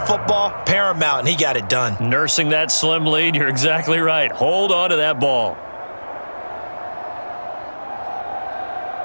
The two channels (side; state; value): both; inverted; correlation -1.00